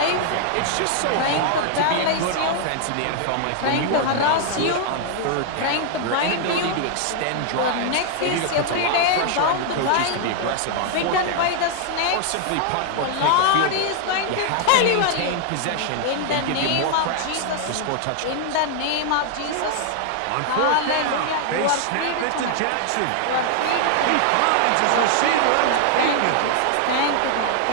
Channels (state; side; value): different; both; correlation 0.00